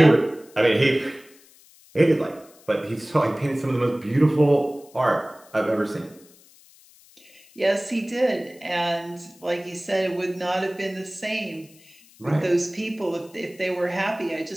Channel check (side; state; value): left; noise; hiss, 26 dB below the sound